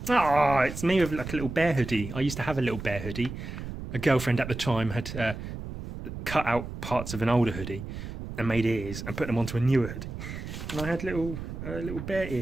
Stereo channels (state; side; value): noise; right; rumble, 8 dB below the sound